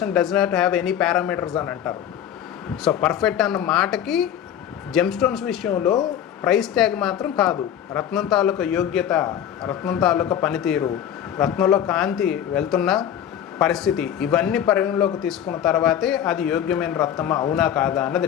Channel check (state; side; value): quieter; right; 10.0 dB